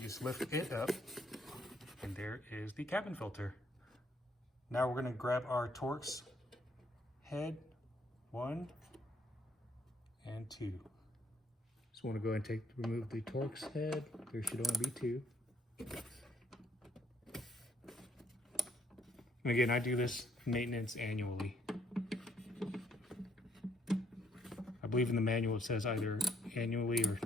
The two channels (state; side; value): normal; both; correlation 0.68